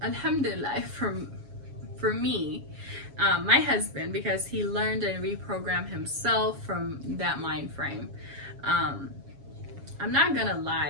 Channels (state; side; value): late; left; 7.2 ms